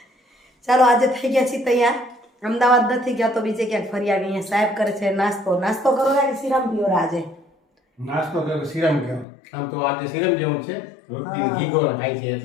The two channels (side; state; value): right; drops out; at 9.2 s